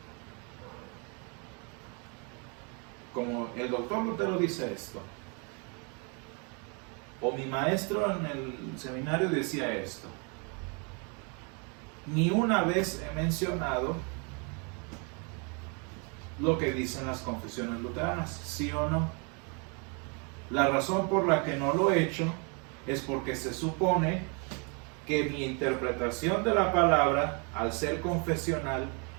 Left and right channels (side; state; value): left; quieter; 34.8 dB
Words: Como el doctor Lutero dice esto, o mi maestro en el seminario decía esto, ni una vez he mencionado lo que dicen las confesiones luteranas, ¿sí o no? La razón por la que no lo he hecho es porque se supone que mi interpretación de la palabra, al ser confesional,